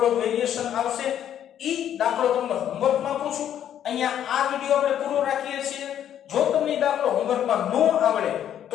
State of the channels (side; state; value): right; quieter; 10.2 dB